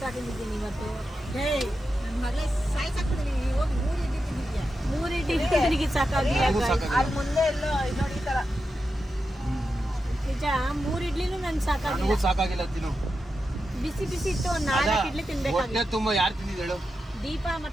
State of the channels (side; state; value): both; normal; correlation 0.89